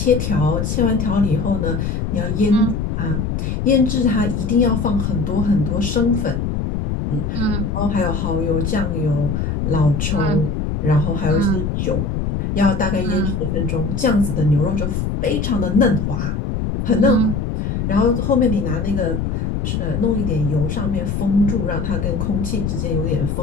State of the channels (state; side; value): noise; left; rumble, 1 dB below the sound